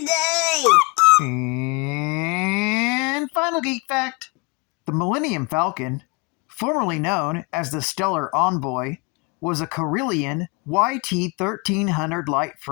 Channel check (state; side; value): quieter; right; 28.3 dB